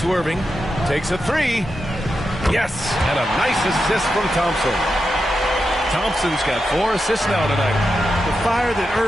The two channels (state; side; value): normal; both; correlation 0.88